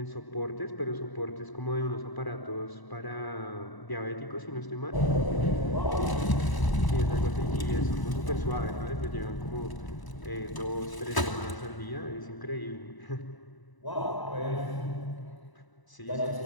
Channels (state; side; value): late; right; 1.0 ms